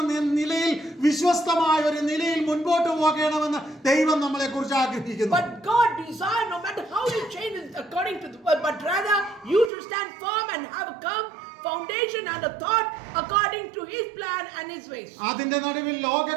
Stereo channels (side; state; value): left; drops out; at 9.7 s